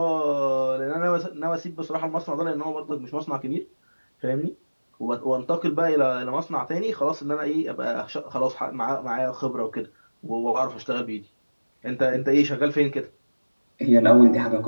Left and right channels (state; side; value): inverted; both; correlation -1.00